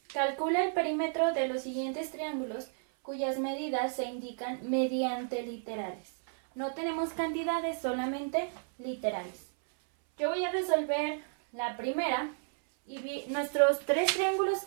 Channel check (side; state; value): left; silent; 56 dB below the other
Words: calcula el perímetro de los siguientes triángulos cuyas medidas se indican mediante literales. No tenemos cantidades, solamente literales. Yo voy a resolver la primera y nuestros tres triángulos